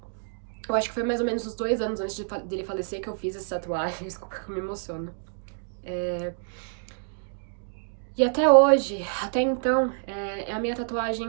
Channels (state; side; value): silent; left; digital silence